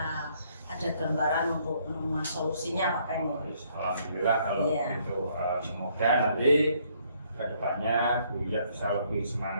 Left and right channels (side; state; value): both; inverted; correlation -0.67